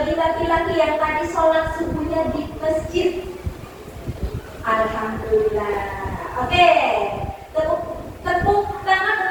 laki-laki yang tadi sholat subuhnya di masjid. Alhamdulillah. Oke. Tepuk tangan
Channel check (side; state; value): both; identical; correlation 1.00